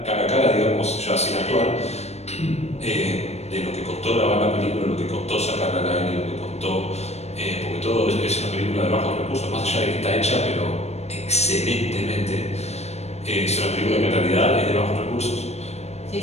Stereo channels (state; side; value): late; right; 0.31 ms